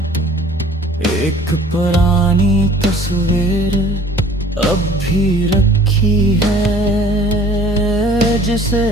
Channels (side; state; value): both; normal; correlation 0.53